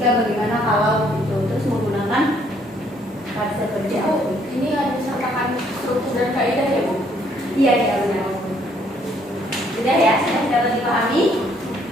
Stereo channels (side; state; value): both; normal; correlation 0.66